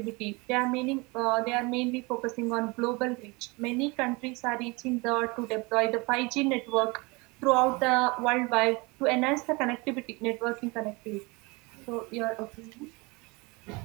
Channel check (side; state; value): left; quieter; 26.5 dB